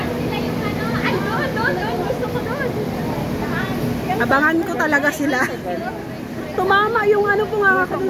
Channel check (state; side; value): identical; both; correlation 1.00